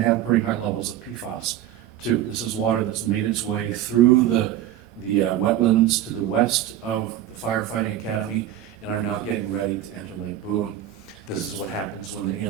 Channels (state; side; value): quieter; left; 11.9 dB